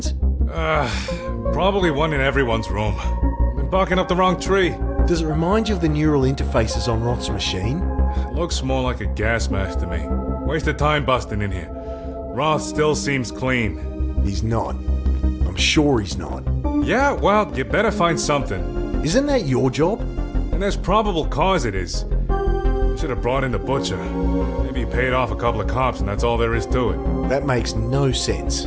Probably one in everyone's room. Been barking up the wrong tree. Does it remind you of the neural interfaces on Roth's machine? Looks more like a gas mask to me. Wasted time busting in here. Roth still seems clean. He's not. I'm sure he's not. Yeah, well, you better find something. Isn't that your job? And there's probable cause it is. I should have brought in the butcher. Maybe he paid off a couple of cops and that's all there is to it. That makes no sense.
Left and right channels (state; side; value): identical; both; correlation 1.00